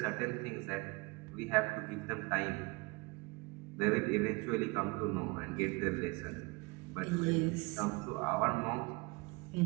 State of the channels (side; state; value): left; quieter; 27.1 dB